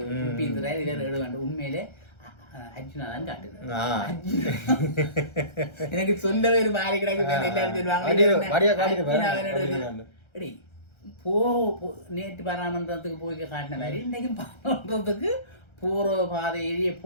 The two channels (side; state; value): right; late; 1.3 ms